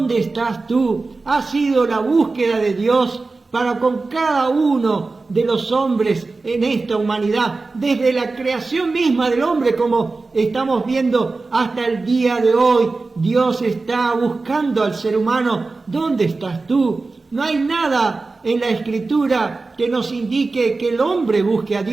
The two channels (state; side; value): quieter; left; 3.7 dB